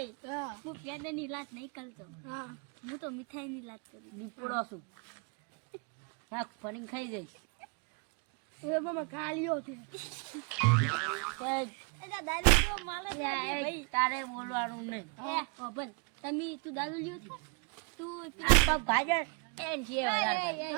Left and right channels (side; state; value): left; quieter; 35.1 dB